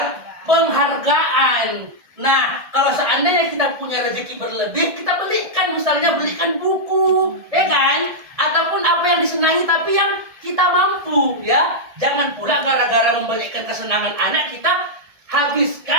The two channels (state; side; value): late; left; 1.7 ms